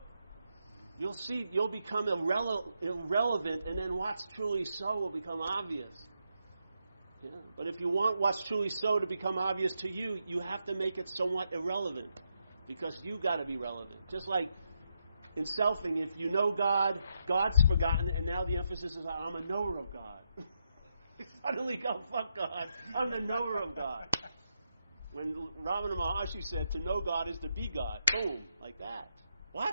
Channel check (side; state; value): both; inverted; correlation -0.81